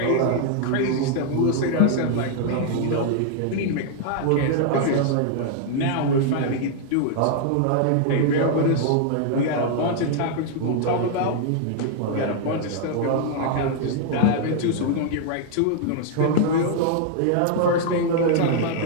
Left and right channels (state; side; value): different; both; correlation -0.01